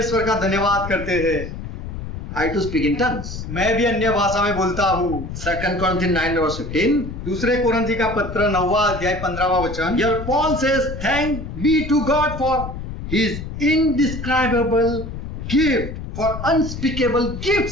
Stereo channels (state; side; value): noise; left; rumble, 8 dB below the sound